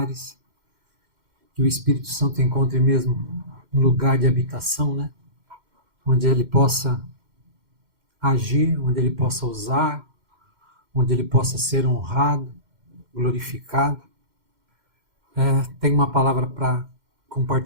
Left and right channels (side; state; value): left; late; 2.1 ms